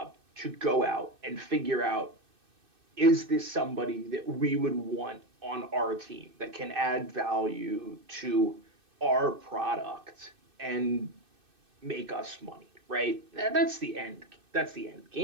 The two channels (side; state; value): left; late; 2.6 ms